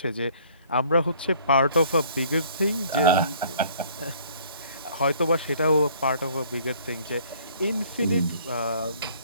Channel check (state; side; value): inverted; both; correlation -0.58